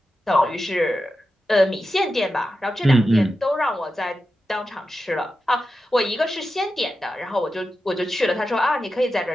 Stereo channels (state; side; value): normal; both; correlation 0.91